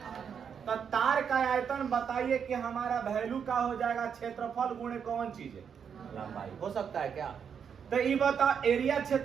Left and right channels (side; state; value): left; quieter; 7.2 dB